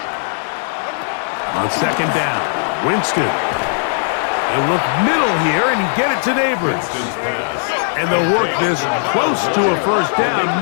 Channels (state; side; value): silent; right; digital silence